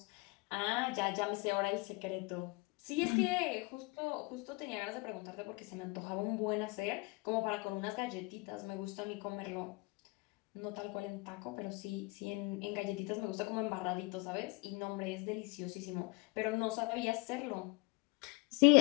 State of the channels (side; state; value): right; quieter; 27.1 dB